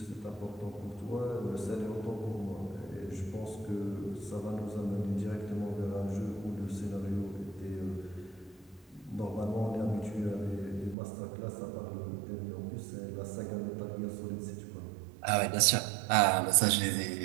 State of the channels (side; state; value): left; drops out; at 11.0 s